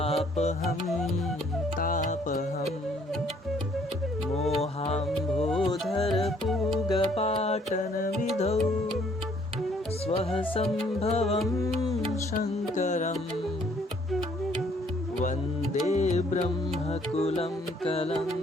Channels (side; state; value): both; normal; correlation 0.63